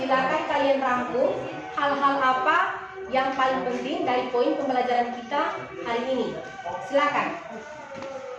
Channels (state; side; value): identical; both; correlation 1.00